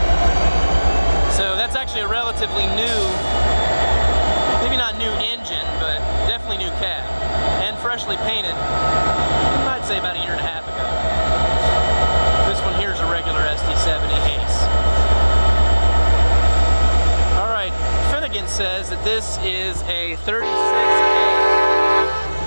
So that's actually a relatively new, maybe not new engine, but definitely new cab, and freshly painted, I'd say about a year and a half ago. This one here is a regular SD70 Ace. Finnegan says that this is a 36A.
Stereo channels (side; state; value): both; inverted; correlation -1.00